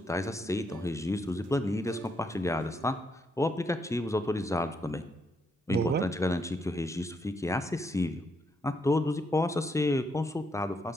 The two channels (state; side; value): normal; both; correlation 0.76